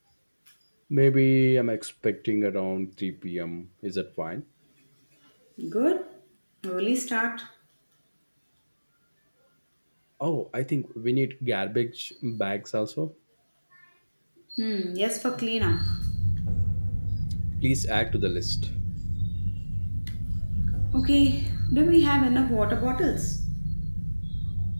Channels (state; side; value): inverted; both; correlation -1.00